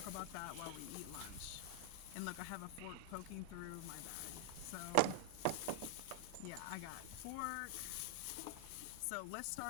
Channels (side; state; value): both; different; correlation 0.00